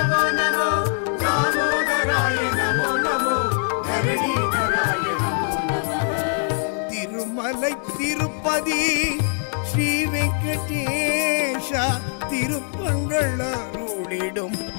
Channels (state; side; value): silent; right; 60 dB below the other